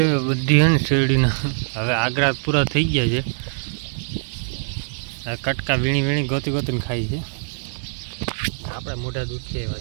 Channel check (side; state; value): left; silent; digital silence